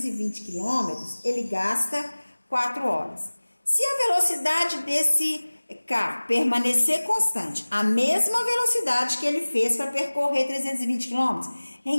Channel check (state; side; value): inverted; both; correlation -1.00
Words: quilômetros, ele gasta 4 horas. Se a velocidade desse carro permanecer constante, a mesma velocidade que ele fez para percorrer 320 quilômetros,